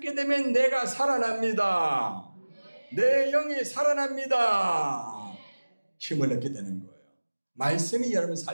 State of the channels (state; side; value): inverted; both; correlation -1.00